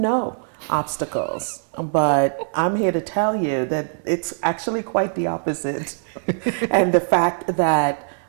obstacles. But I'm here to tell you that it's actually quite the opposite. And the fact that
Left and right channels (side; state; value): left; silent; 64 dB below the other